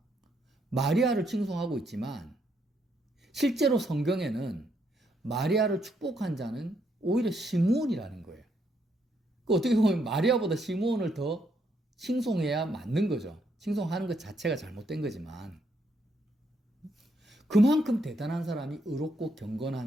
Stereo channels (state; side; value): normal; both; correlation 0.75